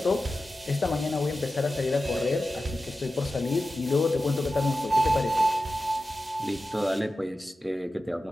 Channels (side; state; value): both; normal; correlation 0.93